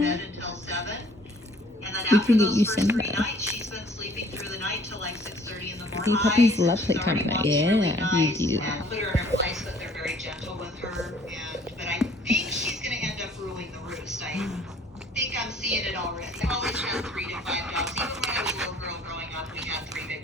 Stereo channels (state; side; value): normal; both; correlation 0.57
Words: bed until 7. And then after those first 3 nights, she's been sleeping through the night till like 6:30 in the morning. Puppies love playtime at night. Yeah, really nice, you do. And put her in her place, but they're very gentle with her. But I think she's going to end up ruling the roost. I think I'm seeing it already. I've always had 3 to 5 dogs. Even when I was a little girl growing up, we had 3